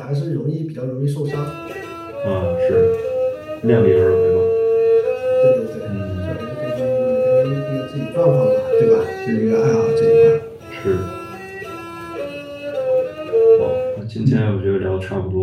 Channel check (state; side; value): identical; both; correlation 1.00